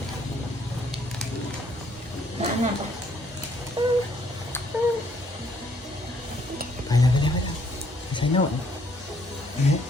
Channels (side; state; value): both; normal; correlation 0.67